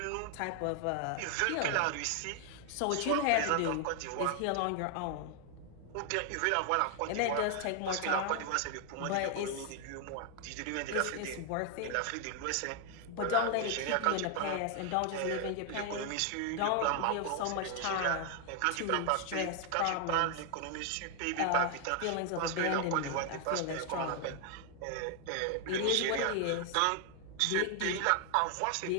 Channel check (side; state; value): both; different; correlation 0.00